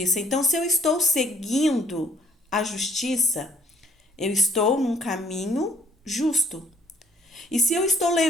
Então, se eu estou seguindo a justiça, eu estou num caminho justo. E se eu estou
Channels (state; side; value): normal; both; correlation 0.61